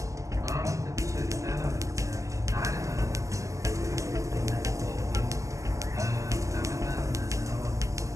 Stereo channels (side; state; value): left; late; 0.16 ms